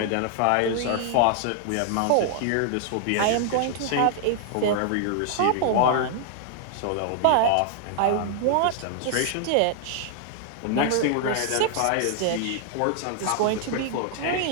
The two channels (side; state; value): both; different; correlation 0.00